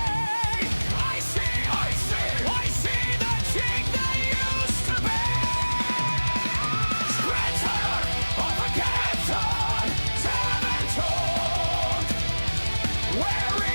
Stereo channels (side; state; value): both; inverted; correlation -1.00